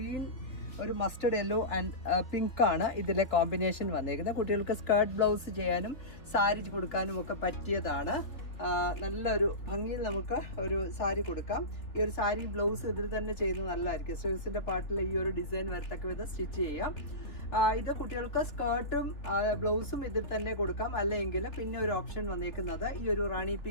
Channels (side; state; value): right; late; 3.4 ms